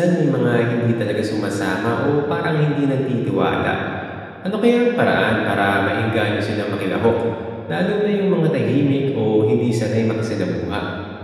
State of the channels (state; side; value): identical; both; correlation 1.00